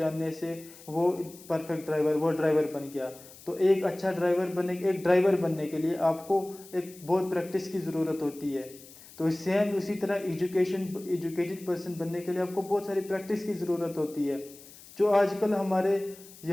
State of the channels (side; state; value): left; noise; hiss, 20 dB below the sound